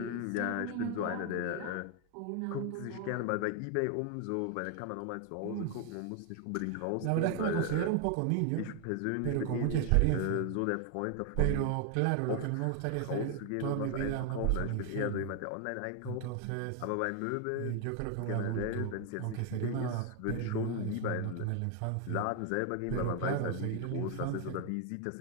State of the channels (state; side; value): different; both; correlation 0.01